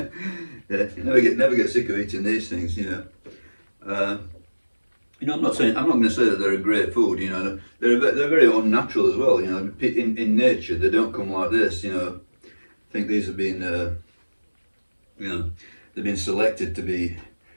Yeah. You never get sick of eating these things, you know. I'm not going to say that they're a great food. You know, they're very unnatural as well. You know, in nature they don't come like this. You know, I think these have been, you know, they've been selected to be.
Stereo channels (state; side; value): inverted; both; correlation -1.00